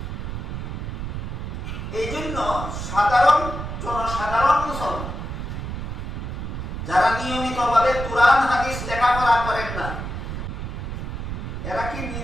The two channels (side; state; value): right; noise; rumble, 5 dB below the sound